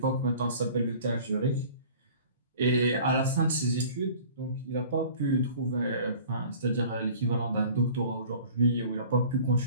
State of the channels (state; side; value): inverted; both; correlation -0.47